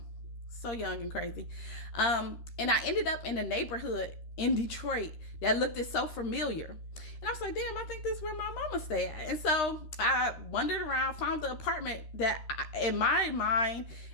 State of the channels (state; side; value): late; right; 13 ms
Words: so young and crazy. And I ended up in a neighborhood in Detroit that looked so familiar. And I was like, damn, I think this is where my mama stay at. And so I wandered around, found the apartment that in my mind,